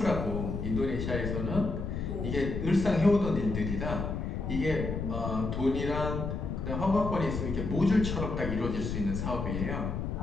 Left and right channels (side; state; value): left; noise; rumble, 3 dB below the sound